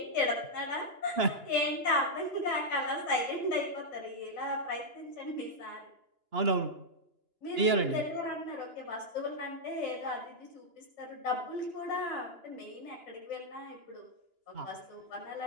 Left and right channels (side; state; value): left; late; 2.9 ms